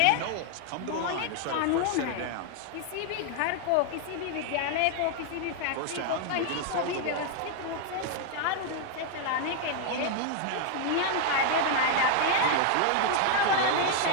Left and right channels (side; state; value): both; different; correlation 0.00